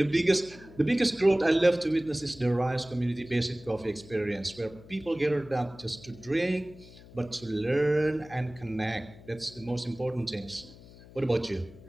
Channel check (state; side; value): noise; left; hum, 20 dB below the sound